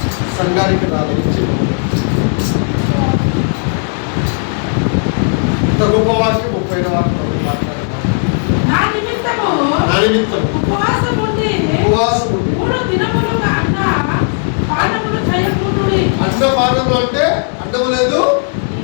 సంఘానికి రాలేదు. ఇంత గొప్ప వాక్యం, పోయిన వాక్యం మాట్లాడతాం. నా నిమిత్తము ఉపవాసం ఉండి 3 దినములు పానములు చేయకుండుడి. అన్నపానములు అంటే అన్నము లేదు,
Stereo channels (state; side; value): silent; right; 59 dB below the other